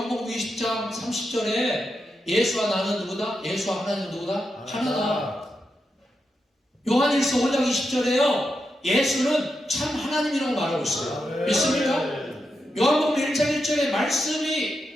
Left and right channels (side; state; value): both; normal; correlation 0.86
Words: 20장 30절에 예수와 나는 누구다? 예수와 하나님은 누구다? 하나다. 요한 1서 5장 20절에요. 예수는 참 하나님이라고 말하고 있어요. 믿습니까? 요한복음 1장 1절에